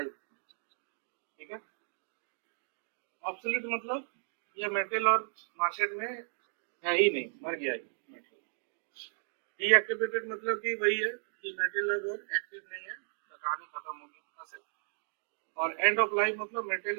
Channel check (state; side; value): silent; left; digital silence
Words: ठीक है। ऑब्सोलीट मतलब ये मटेरियल और मार्केट में है ही नहीं, मर गया ये मटेरियल। डीएक्टिवेटेड मतलब कि वही है कि मटेरियल अब और एक्टिव नहीं है, तो कहानी खत्म हो गई, बस। और एंड ऑफ लाइफ मतलब